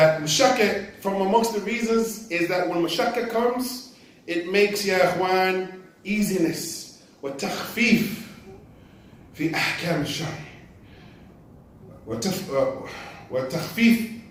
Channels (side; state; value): both; identical; correlation 1.00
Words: mashakka, from amongst the reasons, is that when mashakka comes, it makes, ya ikhwan, easiness. Wa takhfif fi ahkam al-shari. وَتَخْفِيف